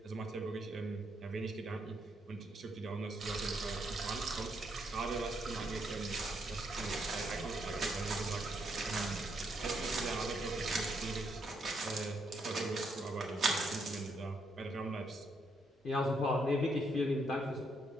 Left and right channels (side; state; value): both; normal; correlation 0.76